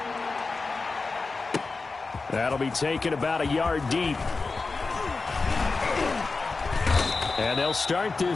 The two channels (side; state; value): right; quieter; 4.0 dB